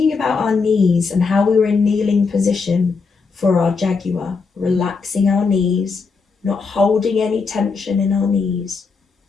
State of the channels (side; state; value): right; quieter; 4.8 dB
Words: about our knees and how we were in kneeling position for our jaguar, relaxing our knees, not holding any tension in our knees,